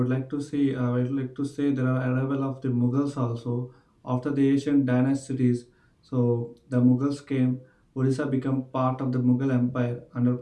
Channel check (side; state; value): both; identical; correlation 1.00